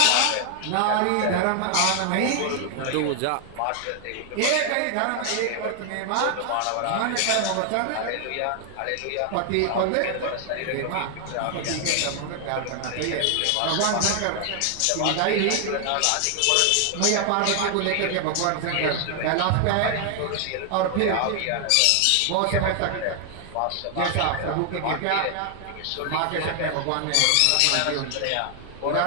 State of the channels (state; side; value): different; both; correlation 0.00